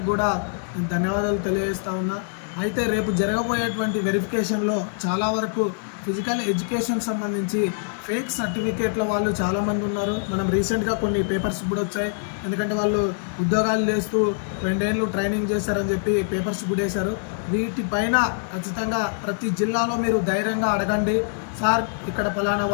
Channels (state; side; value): silent; right; digital silence